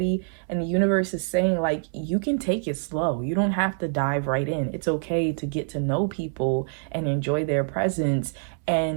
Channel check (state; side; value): silent; left; 61 dB below the other